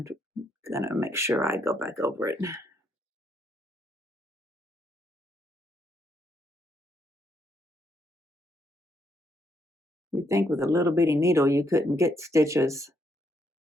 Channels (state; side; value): normal; both; correlation 0.75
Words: make sure I go back over it. You'd think with a little bitty needle you couldn't get stitches